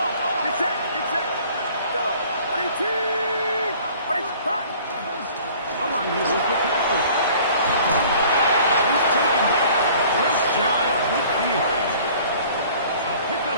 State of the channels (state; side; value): inverted; both; correlation -0.51